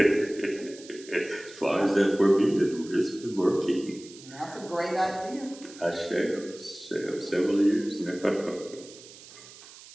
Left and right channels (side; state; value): right; noise; hiss, 19 dB below the sound